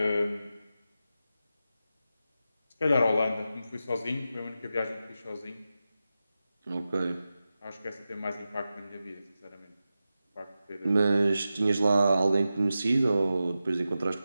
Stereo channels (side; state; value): both; inverted; correlation -0.92